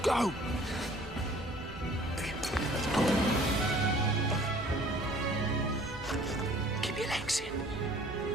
go. Keep your legs in.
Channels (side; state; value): both; normal; correlation 0.52